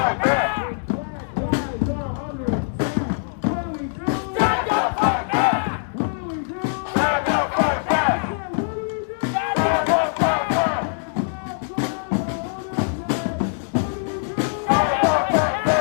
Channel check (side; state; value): right; silent; digital silence